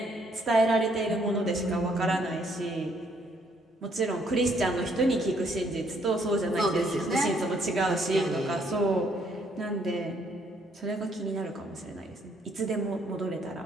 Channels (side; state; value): both; normal; correlation 0.68